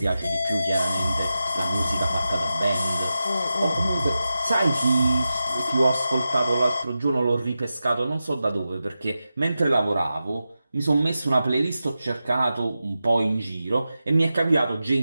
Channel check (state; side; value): inverted; both; correlation -0.92